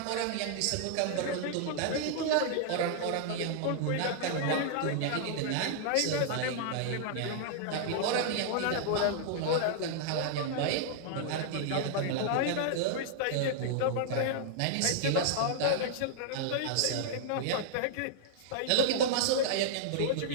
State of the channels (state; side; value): different; both; correlation -0.01